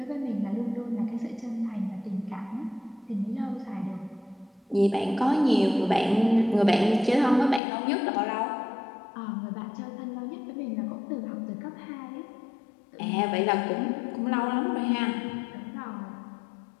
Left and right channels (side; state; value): right; drops out; at 7.6 s